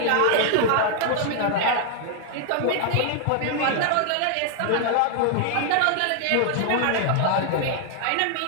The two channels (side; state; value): both; different; correlation 0.00